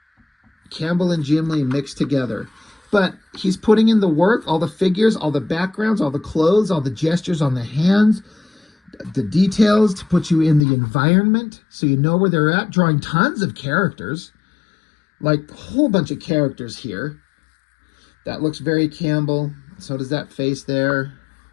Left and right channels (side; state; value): right; drops out; at 10.7 s